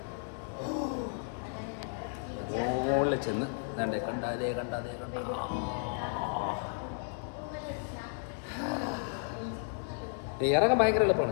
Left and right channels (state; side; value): silent; right; digital silence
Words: മുകളിൽ ചെന്ന് കണ്ടാലേ ഇറങ്ങാൻ ഭയങ്കര